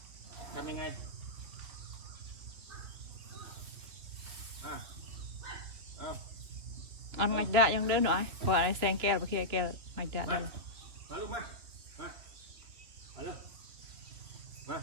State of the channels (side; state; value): left; late; 3.3 ms